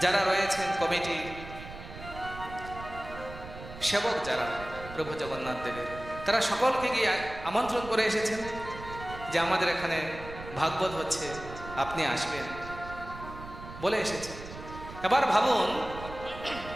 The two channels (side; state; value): right; noise; rumble, 13 dB below the sound